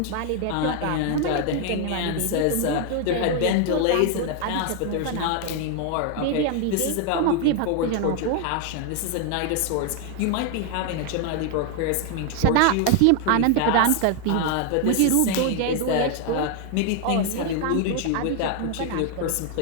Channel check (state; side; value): different; both; correlation 0.00